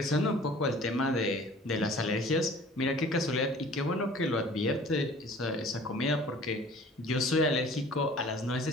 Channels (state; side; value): normal; both; correlation 0.48